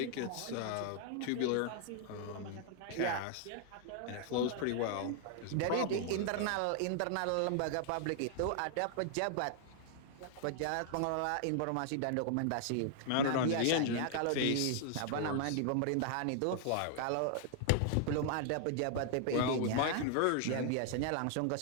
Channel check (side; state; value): both; different; correlation 0.00